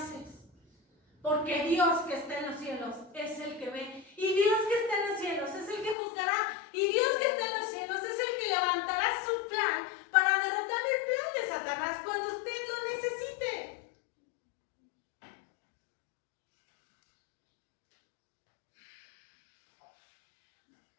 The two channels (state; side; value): drops out; right; at 6.0 s